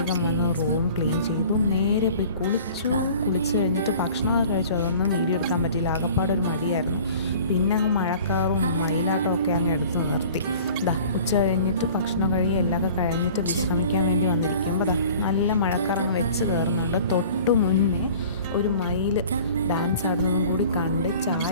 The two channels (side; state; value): both; inverted; correlation -0.46